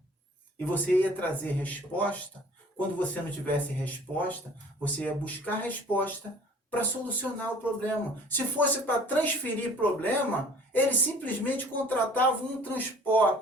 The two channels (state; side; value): normal; both; correlation 0.51